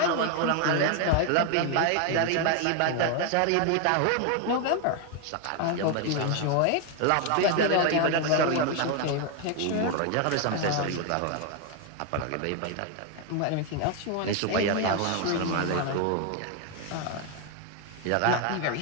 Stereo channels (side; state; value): both; different; correlation 0.01